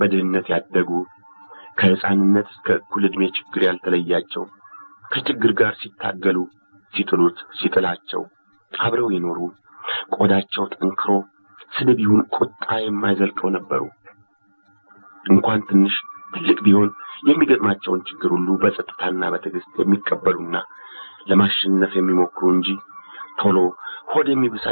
ያደጉ፣ ከሕፃንነት እስከ እኩል ዕድሜ ችግር ያልተለያቸው፣ ከችግር ጋር ሲታገሉ ሲጥሉት ሲጥላቸው አብረው የኖሩ፣ ቆዳቸው ጠንክሮ ስድብ ይሁን ቁጣ የማይዘልቀው ነበሩ። እንኳን ትንሽ ትልቅ ቢሆን የሚገጥማቸውን ችግር ሁሉ በጸጥታና በትዕግስት የሚቀበሉና ለማሸነፍ የሚሞክሩ እንጂ ቶሎ ሆድ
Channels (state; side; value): inverted; both; correlation -1.00